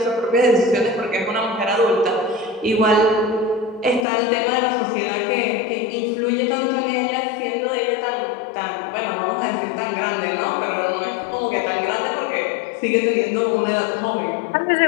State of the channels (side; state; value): right; drops out; at 4.0 s